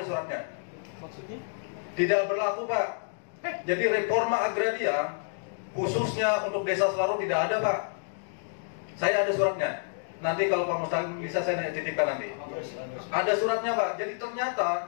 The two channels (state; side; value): silent; right; digital silence